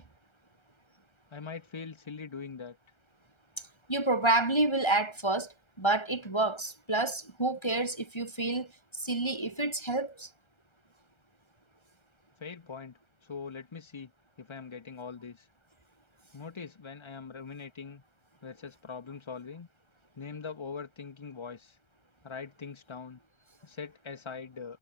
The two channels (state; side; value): late; right; 1.3 ms